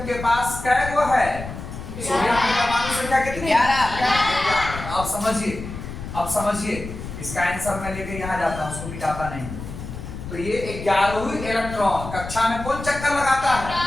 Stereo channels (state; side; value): noise; left; rumble, 10 dB below the sound